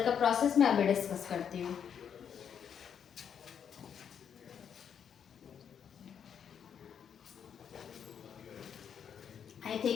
का प्रोसेस मैं अभी डिस्कस करती हूँ। आई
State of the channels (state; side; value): quieter; right; 7.9 dB